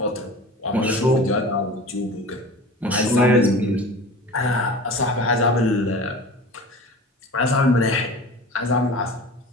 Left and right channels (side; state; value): both; normal; correlation 0.37